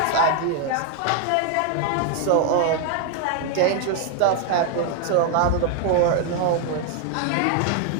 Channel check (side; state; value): both; different; correlation 0.01